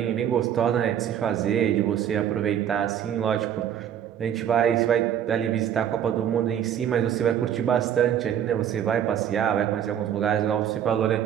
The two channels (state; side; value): quieter; left; 9.7 dB